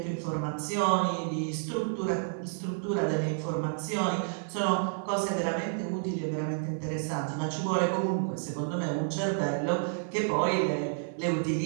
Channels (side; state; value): left; silent; digital silence